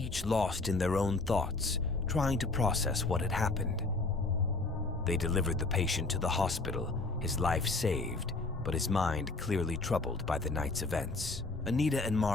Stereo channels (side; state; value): right; quieter; 3.4 dB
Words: lost in their own thoughts, trying to process what had happened. They delivered the patient to the hospital, his life saved, but his mind clearly troubled by the night's events. Anita and